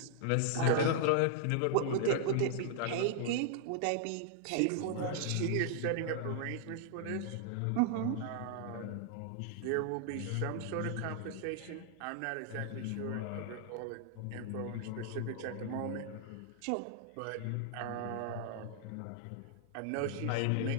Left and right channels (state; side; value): different; both; correlation -0.01